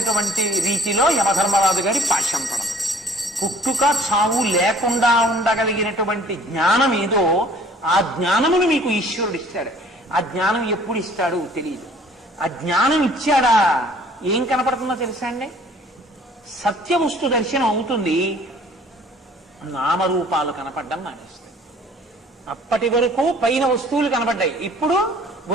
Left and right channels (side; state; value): both; normal; correlation 0.54